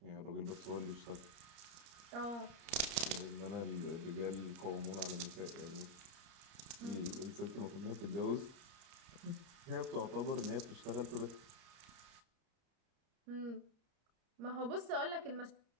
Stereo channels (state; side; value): late; left; 30 ms